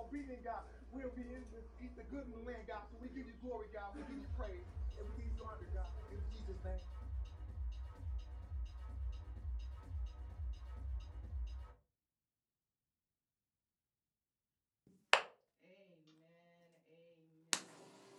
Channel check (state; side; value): identical; both; correlation 1.00